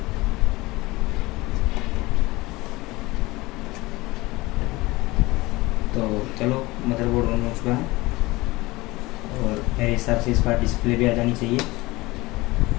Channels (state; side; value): quieter; right; 21.1 dB